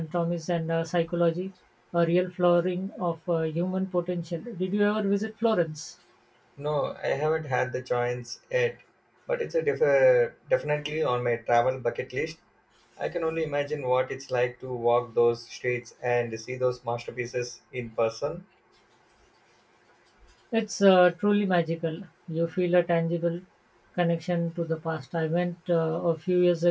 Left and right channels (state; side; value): identical; both; correlation 1.00